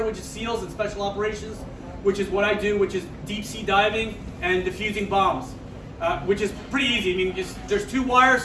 which is SEALs, and special operations, which is what I do, which is deep sea diving and defusing bombs, which is pretty easy. I mean, there's 2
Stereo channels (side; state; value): both; identical; correlation 1.00